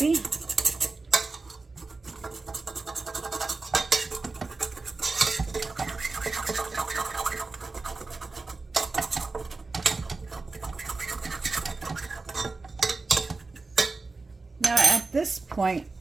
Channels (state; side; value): quieter; left; 3.8 dB